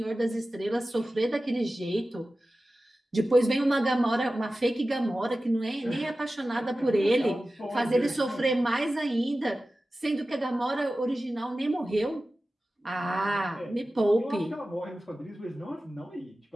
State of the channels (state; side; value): normal; both; correlation 0.95